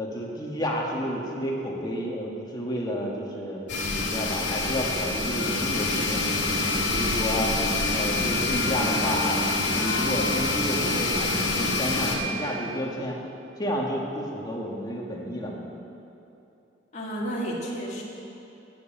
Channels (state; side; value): normal; both; correlation 0.17